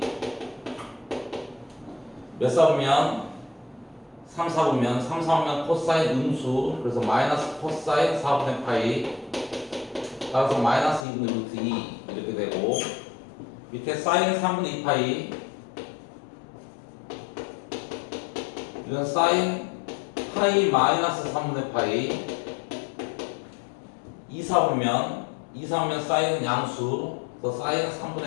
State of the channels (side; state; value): right; drops out; at 11.1 s